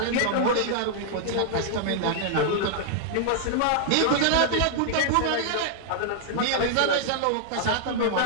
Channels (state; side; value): different; both; correlation -0.01